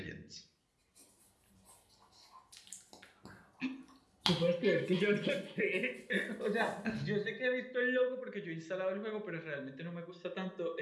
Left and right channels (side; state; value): both; identical; correlation 1.00